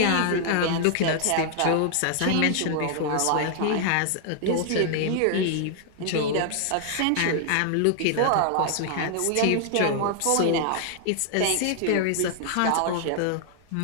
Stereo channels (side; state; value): both; different; correlation 0.00